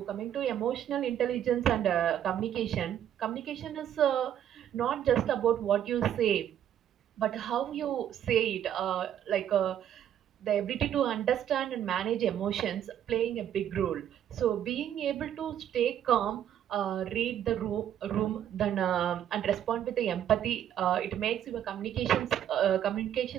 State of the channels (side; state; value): left; quieter; 10.3 dB